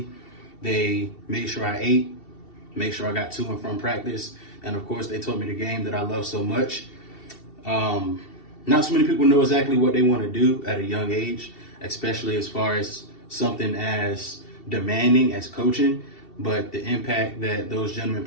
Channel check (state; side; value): late; right; 2.7 ms